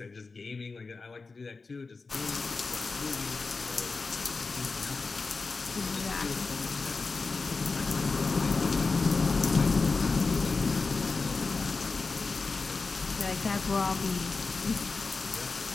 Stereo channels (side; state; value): right; quieter; 4.1 dB